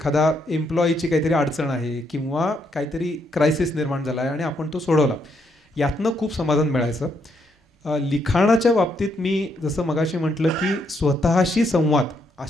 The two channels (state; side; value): normal; both; correlation 0.75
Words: एम्प्लॉईची काहीतरी अडचण आहे किंवा काहीतरी क्रायसिस निर्माण झाला आहे आणि आपण तो सोडवला, यातनं खूप समाधान मिळायचं. लिखाणाच्या बाबतीत मी जसं मगाशी म्हटलं की स्वतःशी संवाद